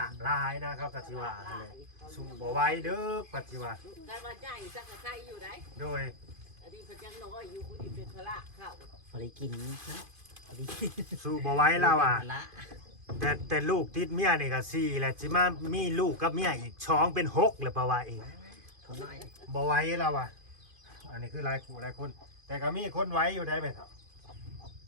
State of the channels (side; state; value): left; late; 2.5 ms